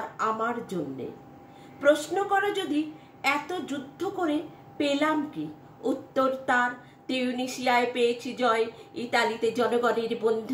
আমার জন্যে। প্রশ্ন করো যদি এত যুদ্ধ করে পেলাম কি, উত্তর তার তিউনিসিয়ায় পেয়েছি জয়, ইতালিতে জনগণের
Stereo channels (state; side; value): identical; both; correlation 1.00